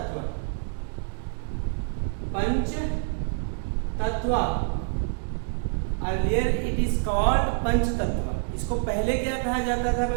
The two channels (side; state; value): left; silent; 60 dB below the other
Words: पंचतत्व अर्लियर इट इज कॉल्ड पंचतत्व। इसको पहले क्या कहा जाता था